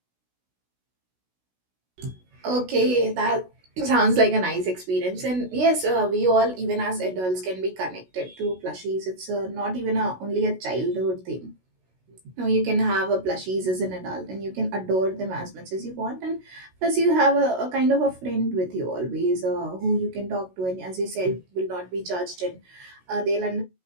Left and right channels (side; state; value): left; late; 16 ms